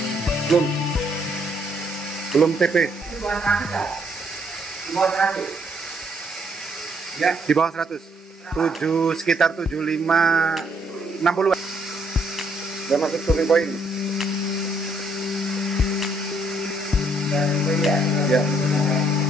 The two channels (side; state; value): both; normal; correlation 0.70